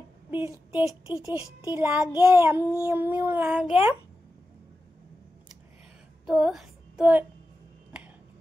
টেস্টি টেস্টি লাগে, এমনিও লাগে। তো তো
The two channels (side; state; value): both; normal; correlation 0.92